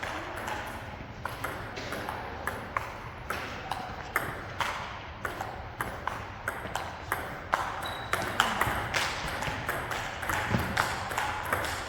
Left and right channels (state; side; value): identical; both; correlation 1.00